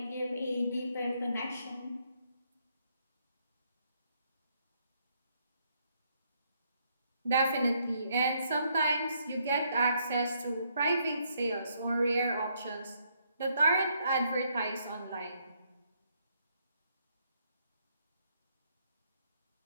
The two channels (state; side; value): inverted; both; correlation -0.72